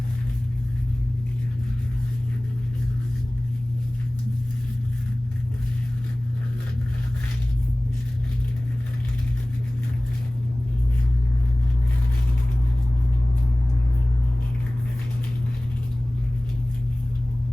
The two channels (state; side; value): normal; both; correlation 0.98